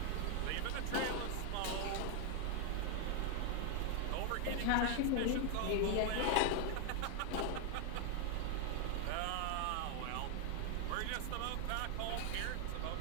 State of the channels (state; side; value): different; both; correlation 0.00